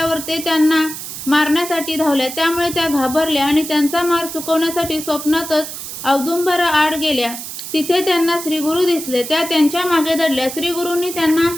ते त्यांना मारण्यासाठी धावले. त्यामुळे त्या घाबरल्या आणि त्यांचा मार चुकवण्यासाठी स्वप्नातच औदुंबरा आड गेल्या. तिथे त्यांना श्रीगुरु दिसले. त्या त्यांच्या मागे दडल्या. श्रीगुरूंनी त्यांना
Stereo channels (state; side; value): noise; right; hiss, 9 dB below the sound